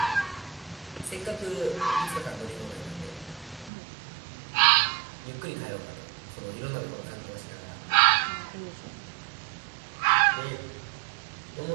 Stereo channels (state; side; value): drops out; left; at 3.7 s